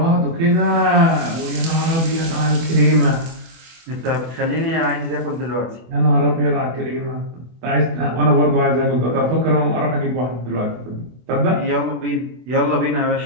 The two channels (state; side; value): late; left; 24 ms